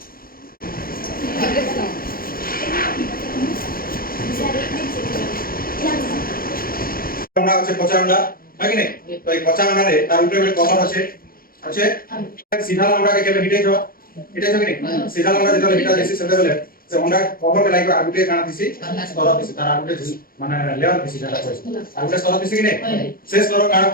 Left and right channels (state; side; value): late; right; 0.42 ms